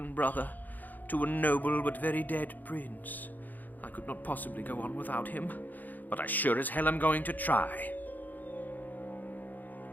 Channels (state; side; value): late; right; 0.084 ms